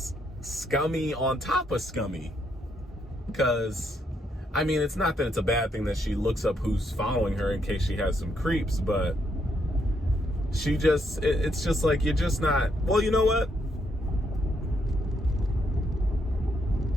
scummy on top of scummy. Because, I mean, it's not that it's a bad thing that she looks up who's following her in case she has some creeps, but she just, it's just like, you're just not, well, you know what?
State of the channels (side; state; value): both; normal; correlation 0.76